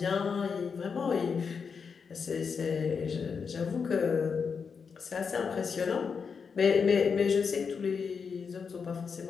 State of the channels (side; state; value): right; quieter; 5.9 dB